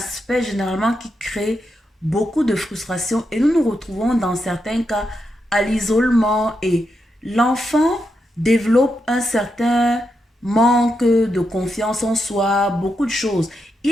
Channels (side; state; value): both; normal; correlation 0.84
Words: généralement qui crée beaucoup de frustration et nous nous retrouvons dans certains cas à l'isolement et l'enfant développe un certain manque de confiance en soi, beaucoup de choses.